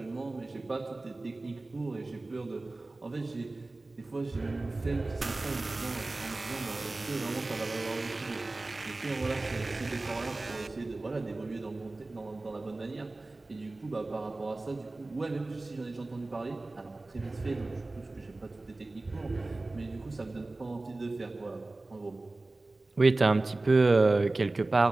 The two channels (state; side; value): quieter; left; 3.1 dB